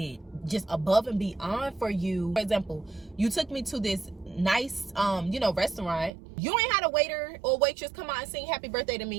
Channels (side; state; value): left; drops out; at 6.1 s